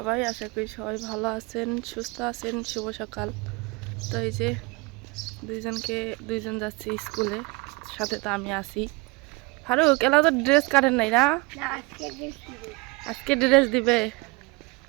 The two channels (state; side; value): quieter; left; 25.9 dB